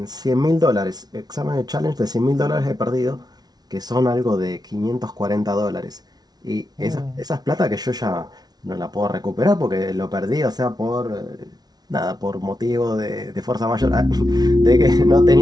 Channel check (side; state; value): left; late; 0.19 ms